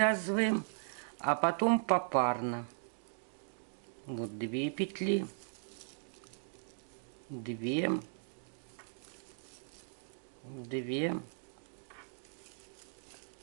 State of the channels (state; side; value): silent; left; digital silence